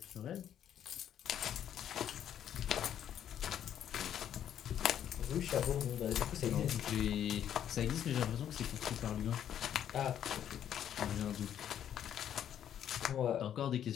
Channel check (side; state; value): right; quieter; 10.0 dB